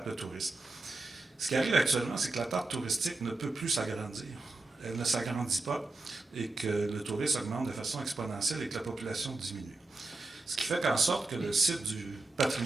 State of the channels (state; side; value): quieter; left; 3.2 dB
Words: le tourisme. Ce qui arrive actuellement, c'est que la tarte touristique ne peut plus s'agrandir. Elle ne s'agrandit pas et que le tourisme augmente de façon exponentielle et que la population diminue. Ce qui fait qu'en sorte que le site du